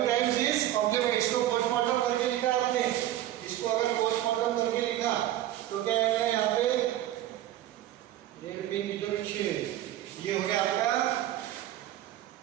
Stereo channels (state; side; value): quieter; left; 13.2 dB